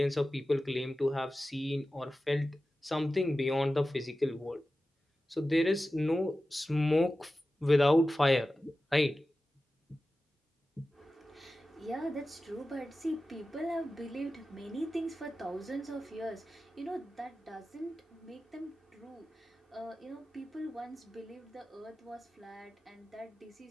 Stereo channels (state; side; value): normal; both; correlation 0.94